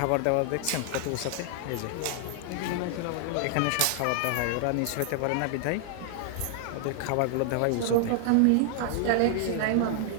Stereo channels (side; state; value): both; different; correlation -0.01